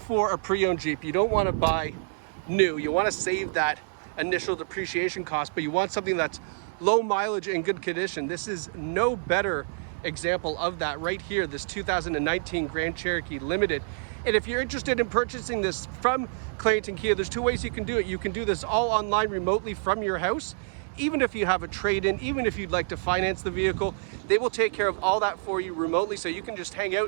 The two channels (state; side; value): silent; left; digital silence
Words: a pre-owned Jeep, you don't want to buy new, you want to save that initial depreciation cost, but you want something that's low mileage and good condition, this is no better example of that right here, this 2019 Grand Cherokee Limited. And if you're interested in purchasing this from Clarington Kia, there's two ways you can do it. You can do this all online remotely from your house. Even if you have a trade-in, even if you'd like to finance the vehicle, they will take care of all that for you remotely. So you can just hang